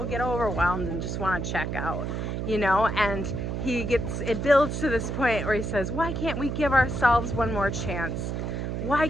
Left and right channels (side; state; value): right; noise; hum, 3 dB below the sound